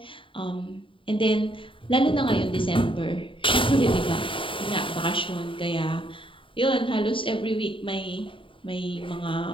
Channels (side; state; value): right; late; 0.25 ms